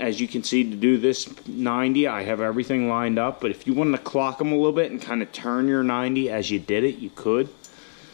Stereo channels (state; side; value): silent; right; 63 dB below the other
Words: you can see, to do this 90, I have everything lined up, but if you wanted to clock them a little bit and kind of turn your 90 as you did it, you could.